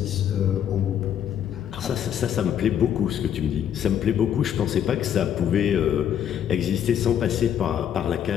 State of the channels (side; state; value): right; quieter; 9.5 dB